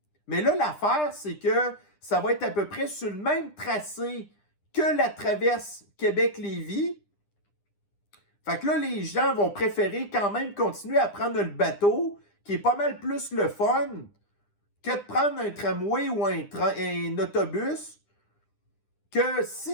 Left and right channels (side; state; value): right; late; 9.9 ms